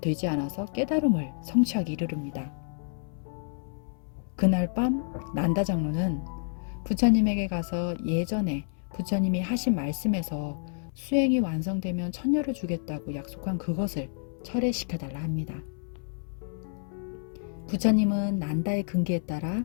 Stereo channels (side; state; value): right; silent; 59 dB below the other